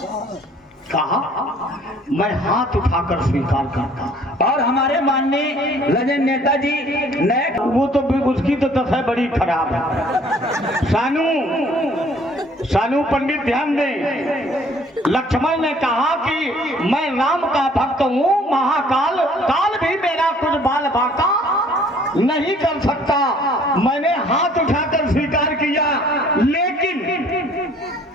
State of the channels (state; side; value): normal; both; correlation 0.57